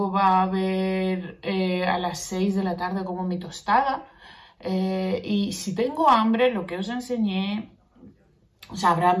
va a haber a las 6 de la tarde como mi tostada, y si tengo hambre, lo que os enseñé, habrá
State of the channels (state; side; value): identical; both; correlation 1.00